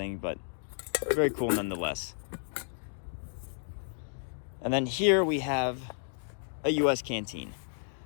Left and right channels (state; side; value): silent; right; digital silence